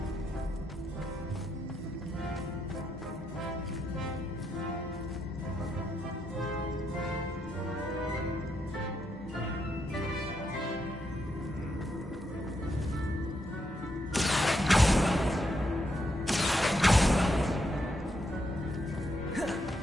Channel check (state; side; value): normal; both; correlation 0.80